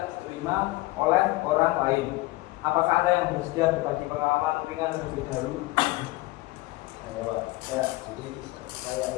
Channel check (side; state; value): right; quieter; 20.2 dB